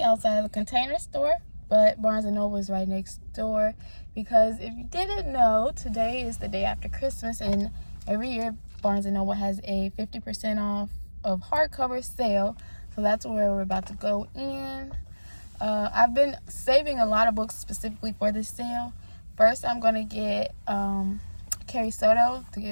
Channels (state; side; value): inverted; both; correlation -1.00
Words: outside of the Container Store, but Barnes & Noble is right next door because if you didn't know, today is the day after Christmas, and every year Barnes & Noble has a 50% off of hardcover sale, so that's where we're about to go in. I've been saving a lot of books specifically for this sale. First, I'm going to get